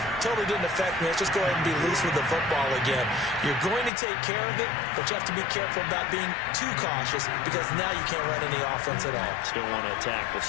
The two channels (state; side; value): drops out; right; at 3.9 s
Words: totally didn't affect me. Let's just go ahead and be loose with the football again. You're going to take care of it, but you have to be careful about being too cautious because now you can't run any offense at all. Still want to attack. We'll